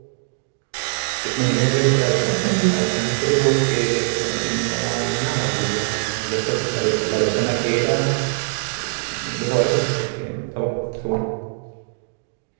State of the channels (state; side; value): silent; left; 64 dB below the other